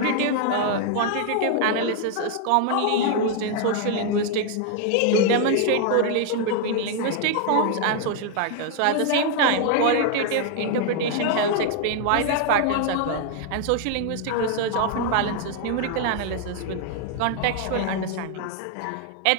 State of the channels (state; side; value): different; both; correlation 0.00